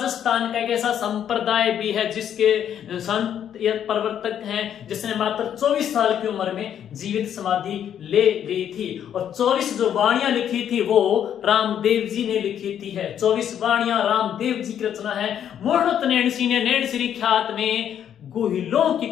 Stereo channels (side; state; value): right; quieter; 9.5 dB